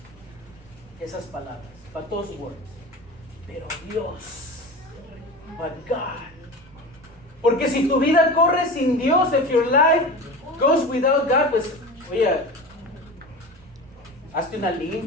Esas palabras, but those words, pero Dios, but God. Porque si tu vida corre sin Dios, if your life goes without God, pues, oye, hazte una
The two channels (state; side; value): noise; right; rumble, 26 dB below the sound